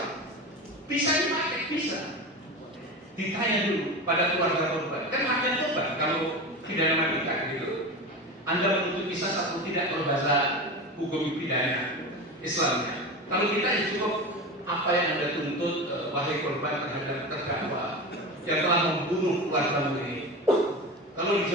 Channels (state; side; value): normal; both; correlation 0.26